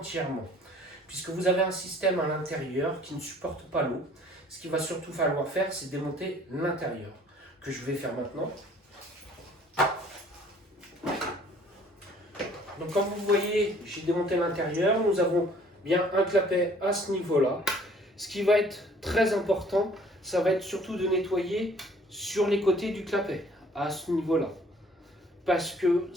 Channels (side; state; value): both; normal; correlation 0.56